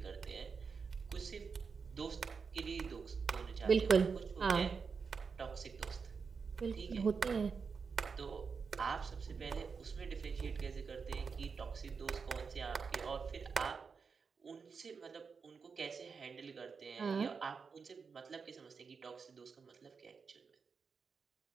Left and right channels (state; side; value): quieter; left; 5.4 dB